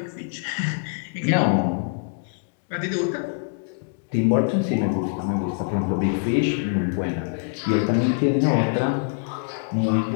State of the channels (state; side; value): silent; right; digital silence